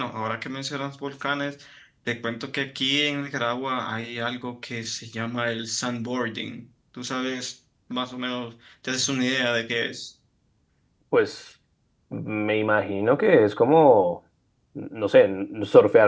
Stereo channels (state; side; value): identical; both; correlation 1.00